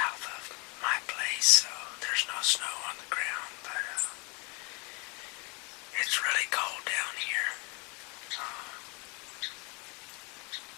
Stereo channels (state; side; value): quieter; right; 30.8 dB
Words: of my place, so there's no snow on the ground, but it's really cold down here.